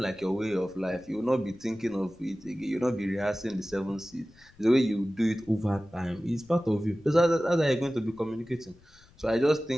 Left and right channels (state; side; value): noise; left; rumble, 27 dB below the sound